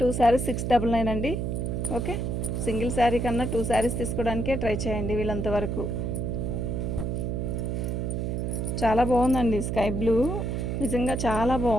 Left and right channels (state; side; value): noise; right; hum, 1 dB below the sound